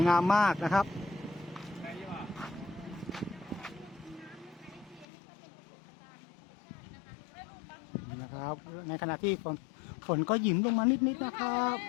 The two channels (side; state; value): right; drops out; at 5.1 s